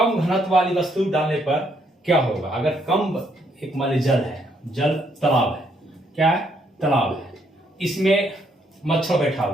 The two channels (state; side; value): normal; both; correlation 0.72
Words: घनत्व वाली वस्तु डालने पर क्या होगा। अगर कम, एक मान लीजिए जल है, जल तालाब है, क्या है, तालाब है, इसमें मच्छर बैठा